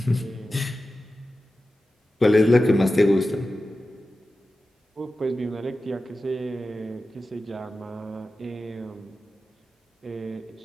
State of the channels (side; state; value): both; normal; correlation 0.93